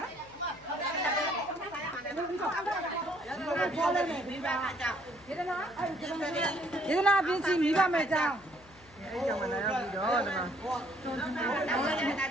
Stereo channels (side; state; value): left; noise; hum, 24 dB below the sound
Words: ယေဒနာပြင်းစီမိဘမဲ့ကြောင်းအဲ့ကြောင့်မလာရောက်ပြီးတော့ဒီမှာလ